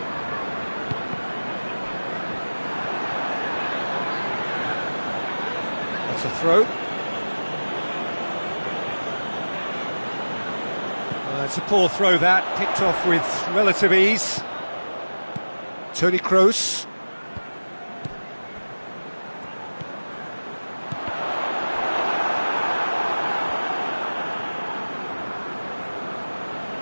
That's a throw. It's a poor throw that, picked off with relative ease. Toni Kroos.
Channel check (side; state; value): both; inverted; correlation -1.00